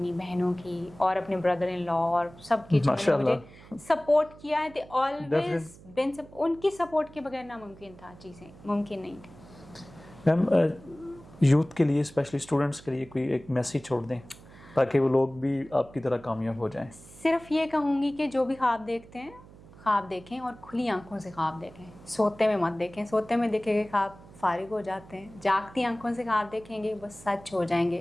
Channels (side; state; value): right; noise; hum, 21 dB below the sound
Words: बहनों की, और अपने ब्रदर इन लॉ और सबकी, जिन्होंने मुझे सपोर्ट किया है। दे ऑलवेज बिन, उनकी सपोर्ट के बगैर नामुमकिन था, चीज़ें मुमकिन नहीं थी। मैम यूथ के लिए, स्पेशली स्टूडेंट्स के लिए कोई एक मैसेज छोड़ दें ताकि वो लोग भी आपकी तरह कामयाब हो जाएं। सिर्फ ये कहूँगी कि जो भी ख्वाब देखते हैं, ख्वाब देखें और खुली आंखों से ख्वाब देखें, सोते में मत देखें। सोते में देखे गए ख्वाब फारिग हो जाते हैं, जागती आंखों से आप देखेंगे वो सच हो